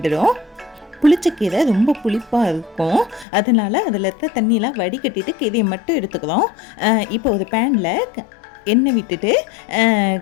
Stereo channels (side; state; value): right; drops out; at 3.2 s